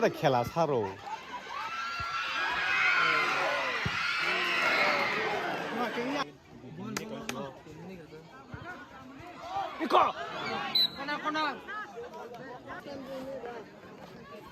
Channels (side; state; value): both; identical; correlation 1.00